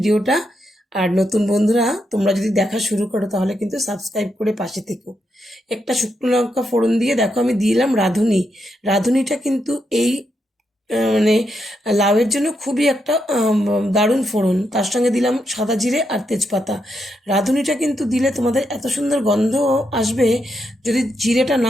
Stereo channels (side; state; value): both; normal; correlation 0.82